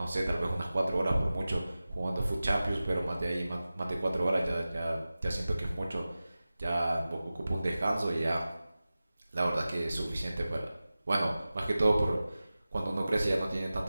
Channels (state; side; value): inverted; both; correlation -0.96